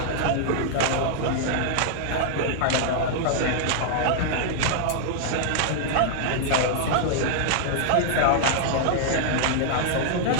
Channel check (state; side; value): different; both; correlation -0.01